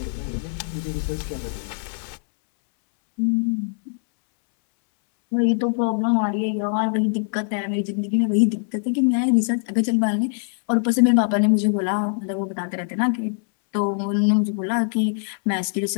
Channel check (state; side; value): silent; right; 64 dB below the other